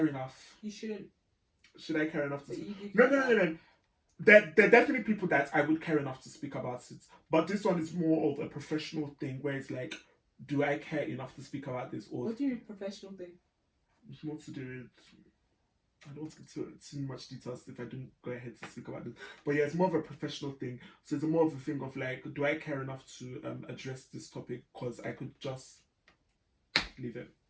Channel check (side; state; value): both; identical; correlation 1.00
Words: enough? You shouldn't. Should I care enough to speak? No. There are definitely people that I would care enough to speak about it. But this one is more of a professional thing where it's like, do I care enough to speak about this? Or what do you mean professional thing? It's more to do with, I don't want to get too much details if I don't go ahead to speak about this. But yeah, it's more of a professional thing. So it's more of a thing of like, do I care enough to address this topic? Because I could just leave it.